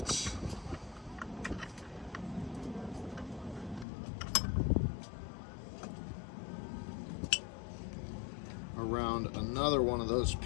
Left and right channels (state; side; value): drops out; right; at 3.9 s